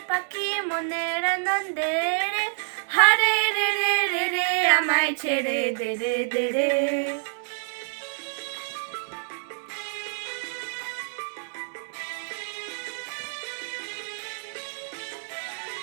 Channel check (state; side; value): silent; left; digital silence